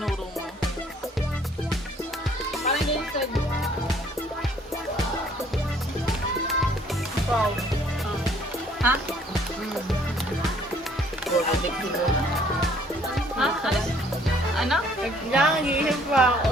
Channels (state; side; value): normal; both; correlation 0.60